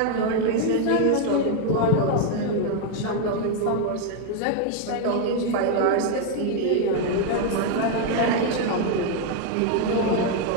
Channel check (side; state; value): both; different; correlation 0.00